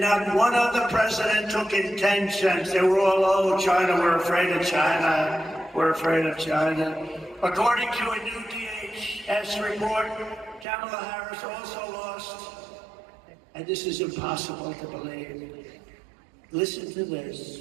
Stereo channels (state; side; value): drops out; left; at 10.7 s